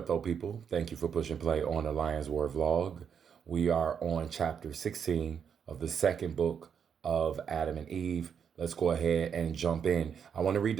though, people? Thank you for pushing play on the Lion's Word vlog. We are on chapter 16 of the second book of Adam and Eve. Let's go ahead and jump in. I want to read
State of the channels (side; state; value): left; quieter; 7.4 dB